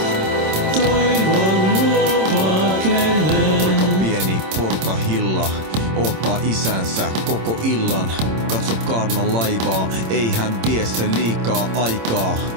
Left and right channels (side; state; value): left; late; 26 ms